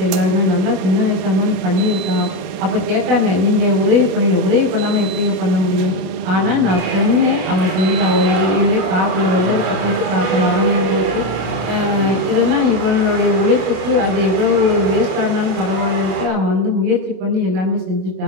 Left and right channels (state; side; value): late; left; 32 ms